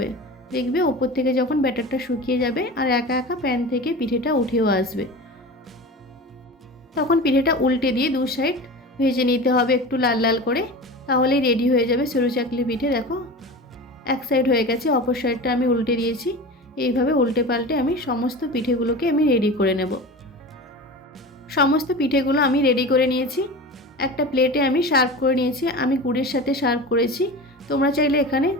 দেখবে ওপর থেকে যখন ব্যাটারটা শুকিয়ে যাবে আর একা একা প্যান থেকে পিঠেটা উঠেও আসবে, তখন পিঠেটা উল্টে দিয়ে 2 সাইড ভেজে নিতে হবে একটু লাল লাল করে। তাহলেই রেডি হয়ে যাবে সরু চাকলি পিঠে। দেখো এক সাইড হয়ে গেছে, অপর সাইডটা আমি উল্টে দিয়েছি। এইভাবে উল্টে পাল্টে আমি সমস্ত পিঠেগুলোকে আমি রেডি করে নেব। সমস্ত পিঠেগুলো আমি রেডি করে নিয়েছি। একটা প্লেটে আমি সার্ভ করে নিয়েছি। আমি গুড়ের সাথে সার্ভ করেছি। তোমরা চাইলে এখানে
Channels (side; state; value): both; normal; correlation 0.32